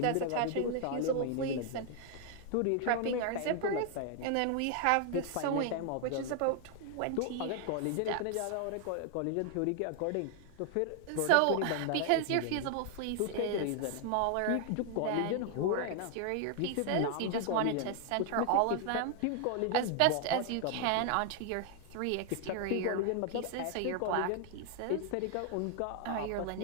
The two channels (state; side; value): different; both; correlation 0.00